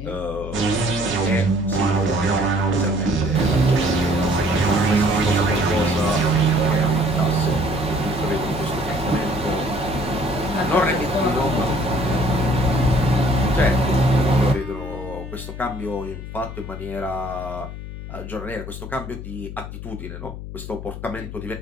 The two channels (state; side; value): noise; left; hum, 10 dB below the sound